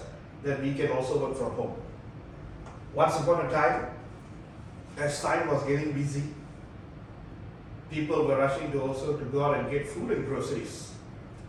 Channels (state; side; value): identical; both; correlation 1.00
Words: that we can also work from home. Once upon a time, as time was getting busy, people were rushing to also to go out and get food and groceries.